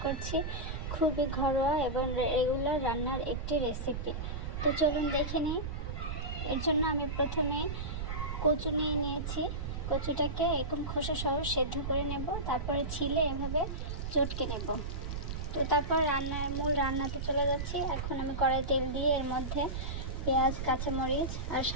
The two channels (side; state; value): right; noise; rumble, 4 dB below the sound